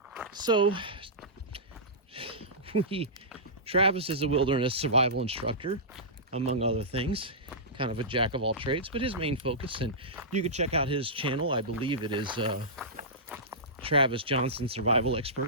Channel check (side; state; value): both; normal; correlation -0.17